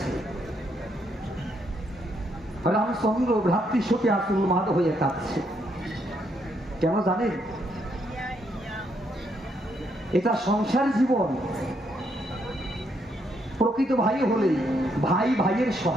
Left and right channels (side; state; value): both; normal; correlation 0.75